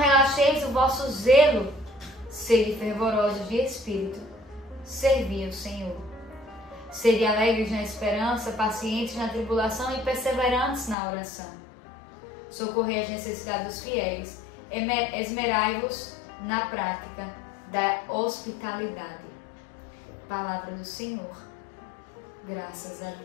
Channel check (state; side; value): drops out; right; at 11.0 s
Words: o vosso zelo. Sede fervorosos de espírito. Servi ao Senhor. Sede alegres na esperança, pacientes na tribulação e perseverantes na oração. Socorrei as necessidades dos fiéis. Esmerai-vos na prática da hospitalidade. Palavra do Senhor. Graças a